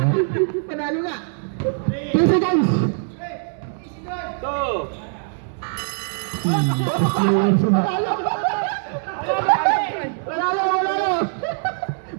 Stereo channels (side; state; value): left; silent; 64 dB below the other